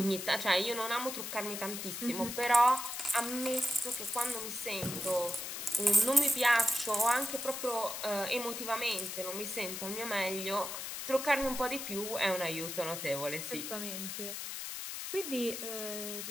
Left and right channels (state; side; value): noise; left; hiss, 6 dB below the sound